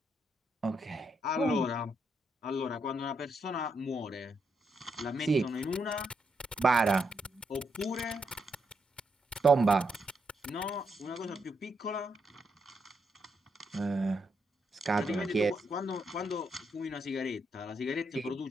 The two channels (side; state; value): both; normal; correlation 0.79